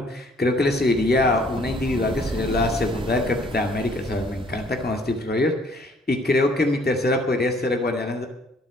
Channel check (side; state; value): both; normal; correlation 0.60